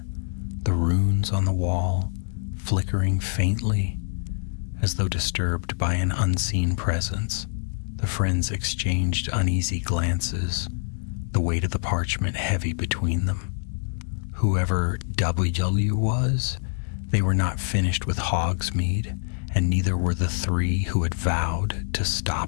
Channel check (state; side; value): silent; right; digital silence